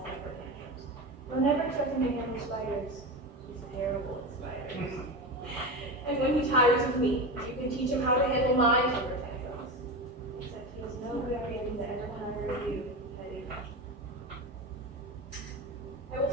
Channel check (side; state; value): both; normal; correlation 0.22